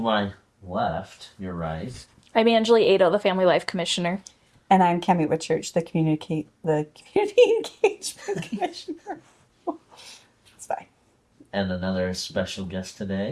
my left, your right. I'm Angelee, Aedo, the Family Life Commissioner. And I'm Cammy Whitchurch, the community engagement commissioner. It's fine. And another special guest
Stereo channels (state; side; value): identical; both; correlation 1.00